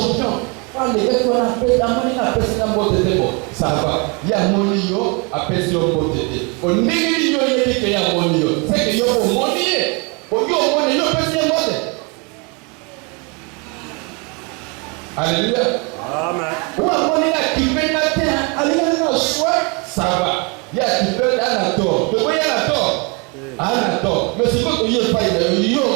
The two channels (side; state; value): left; quieter; 31.8 dB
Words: Les gars qu'on appelle la monnaie, appelle ça un mot de débat. Ça va. Il y a mon lion, appelle ça un mot de débat. On n'est pas lion, il dit qu'il y a mon lion. C'est que il y a mon monnaie. Pour qu'il y ait mon lion, appelle ça un mot de. Alléluia. Amen. Ou à mon lion qui fait la terre, alléluia, soit ça va. Il y a qui fait un tort. De quoi il y a un tort? Un tort. Mais c'est quoi qu'il y a pas il y a